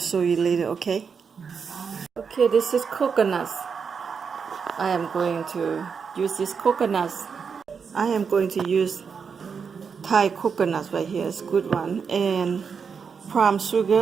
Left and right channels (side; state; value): left; quieter; 6.1 dB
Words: you later, okay? Okay, this is coconuts. I am going to use these coconuts. I am going to use Thai coconuts right here. It's a good one. And palm